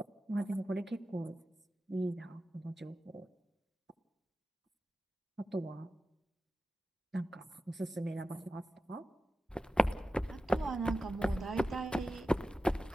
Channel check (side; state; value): both; normal; correlation 0.93